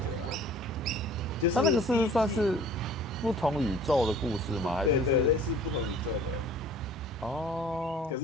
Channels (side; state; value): both; normal; correlation 0.49